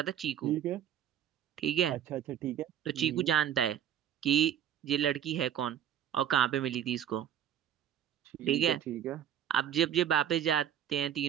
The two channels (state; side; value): quieter; left; 10.0 dB